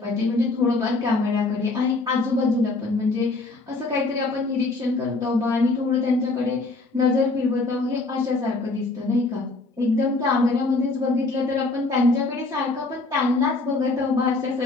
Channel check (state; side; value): quieter; right; 3.4 dB